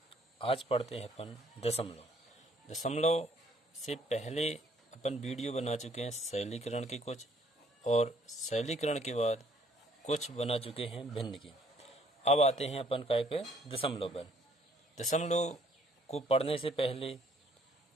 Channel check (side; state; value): both; normal; correlation 0.63